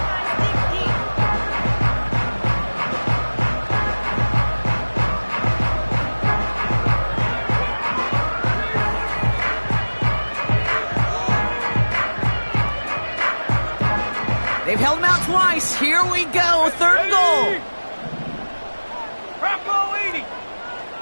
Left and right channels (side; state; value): both; inverted; correlation -1.00